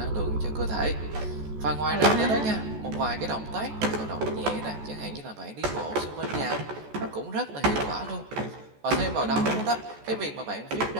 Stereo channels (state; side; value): late; left; 14 ms